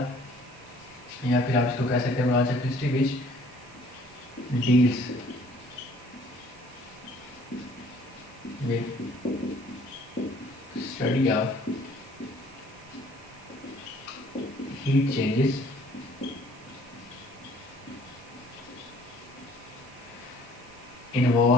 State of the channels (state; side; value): noise; right; hiss, 26 dB below the sound